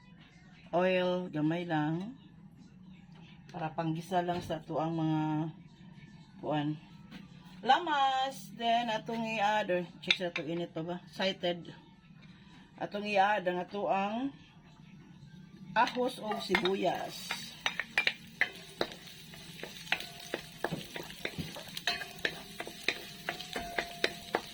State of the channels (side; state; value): both; identical; correlation 1.00